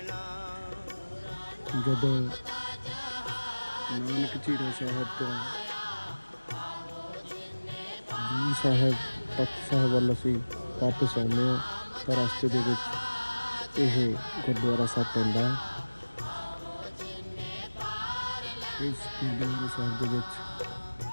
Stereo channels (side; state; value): both; inverted; correlation -1.00